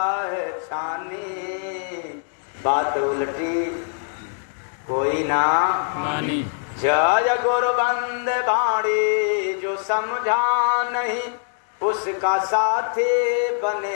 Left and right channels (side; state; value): right; silent; digital silence